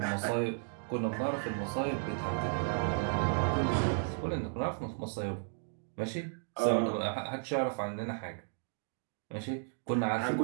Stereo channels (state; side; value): silent; left; digital silence